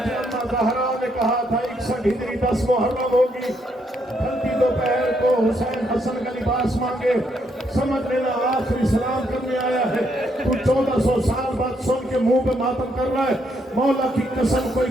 اما زہرا نے کہا تھا 61 ہجری 10 محرم ہوگی ہلکی دوپہر کو حسین حسن کا لباس مانگے سمجھ لینا آخری سلام کرنے آیا ہے تو 1400 سال بعد سن کے منہ پہ ماتم کر رہا ہے مولا کی قسم کوئی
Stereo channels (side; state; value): both; normal; correlation 0.75